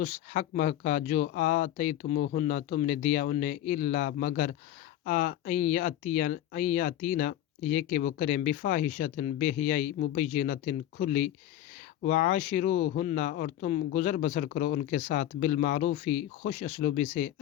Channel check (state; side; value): quieter; right; 12.5 dB